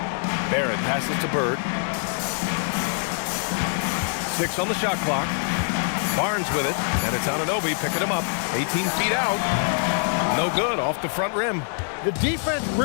Barrett passes to Bird. 6 on the shot clock. Barnes with it, and it's Anunoby picking him up. 18 feet out. No good, off the front rim. The defense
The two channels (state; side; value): silent; right; 62 dB below the other